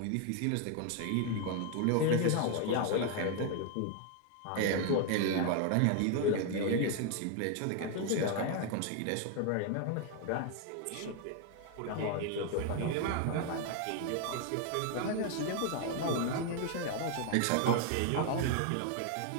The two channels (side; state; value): both; different; correlation 0.01